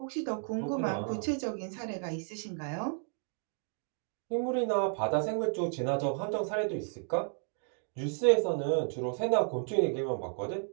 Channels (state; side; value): silent; left; 56 dB below the other